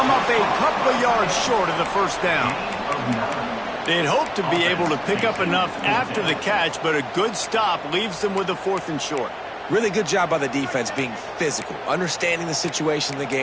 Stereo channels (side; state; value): both; identical; correlation 1.00